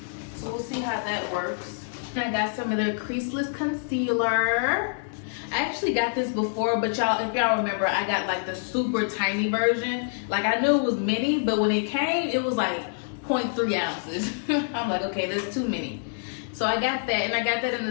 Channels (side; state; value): right; silent; digital silence